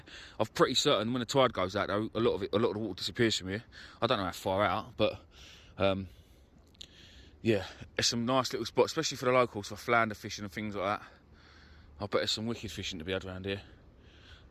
I'm pretty certain when the tide goes out, though, a lot of the water disappears from here. I don't know how far out, but yeah, there's some nice little spots, especially for the locals, for flounder fishing and things like that. I bet there's some wicked fishing to be had around here.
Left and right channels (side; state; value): both; identical; correlation 1.00